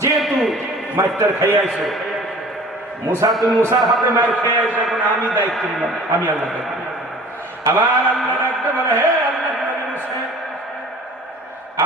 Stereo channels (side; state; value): both; normal; correlation 0.46